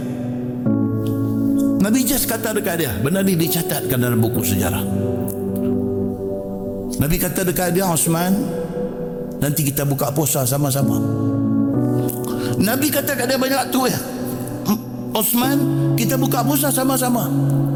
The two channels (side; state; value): both; identical; correlation 1.00